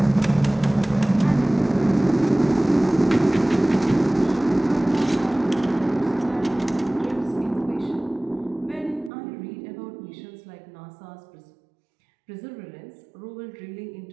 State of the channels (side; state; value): left; drops out; at 9.1 s